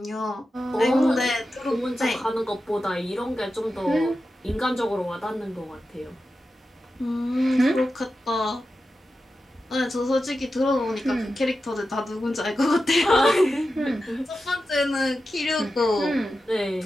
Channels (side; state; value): both; normal; correlation 0.91